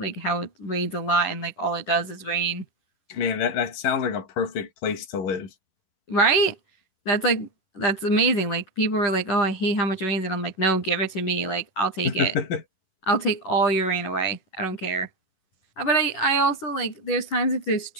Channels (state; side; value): late; right; 11 ms